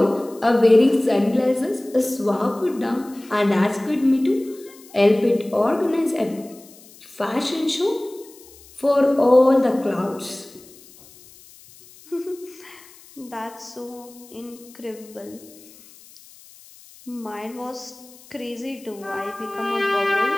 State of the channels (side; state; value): left; noise; hiss, 23 dB below the sound